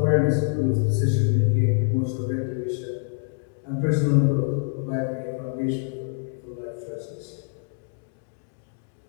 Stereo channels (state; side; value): silent; right; 61 dB below the other